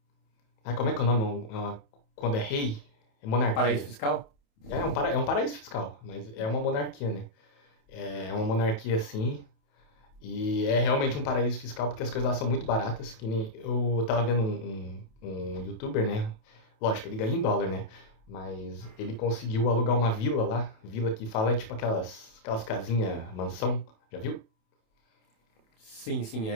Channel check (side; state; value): right; late; 28 ms